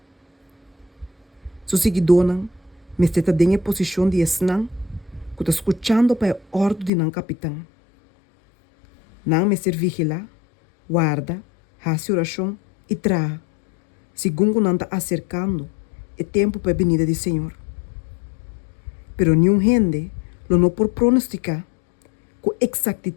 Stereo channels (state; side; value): drops out; right; at 6.9 s